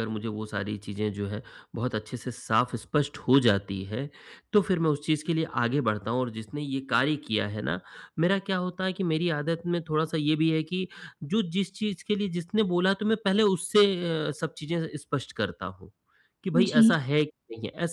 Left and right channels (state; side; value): identical; both; correlation 1.00